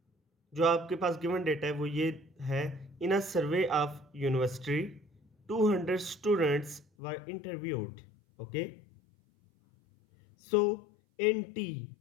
जो आपके पास गिवन डेटा है वो ये है। In a survey of university 200 students were interviewed. Okay, so in T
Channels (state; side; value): drops out; right; at 6.9 s